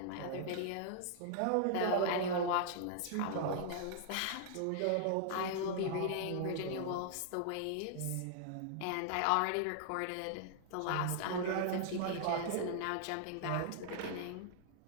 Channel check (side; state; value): both; different; correlation -0.01